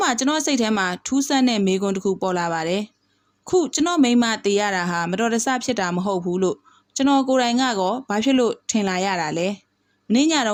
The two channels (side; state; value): both; identical; correlation 1.00